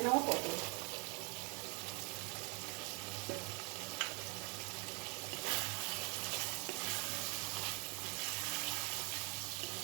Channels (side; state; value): left; quieter; 33.0 dB